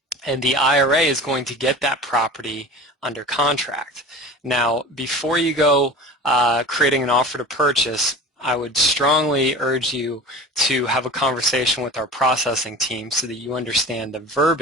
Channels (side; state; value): both; normal; correlation 0.36